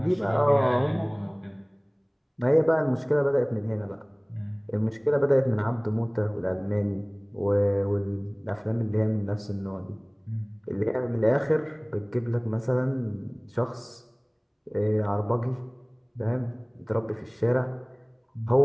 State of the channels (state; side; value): identical; both; correlation 1.00